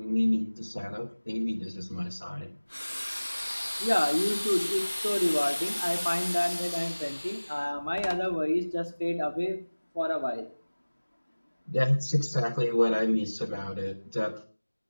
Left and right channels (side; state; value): both; inverted; correlation -1.00